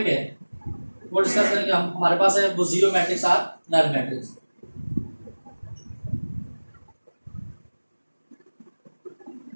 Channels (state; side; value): inverted; both; correlation -1.00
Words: है वो डिस्कस करेंगे हम, हमारे पास है वो जीरो मैट्रिक्स और नल मैट्रिक्स।